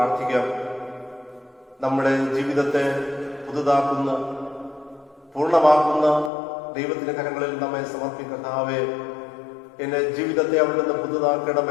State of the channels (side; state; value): right; drops out; at 6.3 s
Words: നമ്മുടെ ജീവിതത്തെ പുതുതാക്കുന്ന, പൂർണ്ണമാക്കുന്ന ദൈവത്തിന്റെ കരങ്ങളിൽ നമ്മെ സമർപ്പിക്കർത്താവേ, എന്റെ ജീവിതത്തെ അവിടുന്ന്